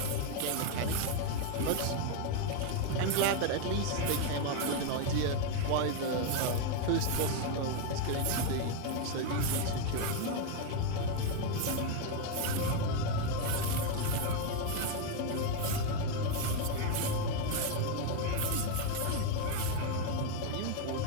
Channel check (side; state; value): both; different; correlation 0.01